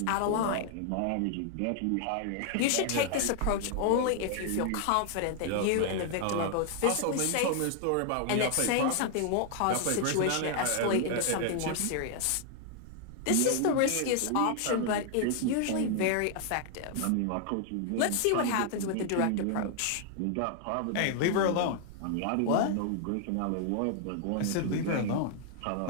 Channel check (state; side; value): different; both; correlation 0.00